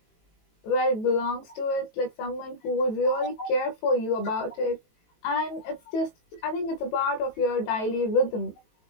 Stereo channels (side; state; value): right; late; 18 ms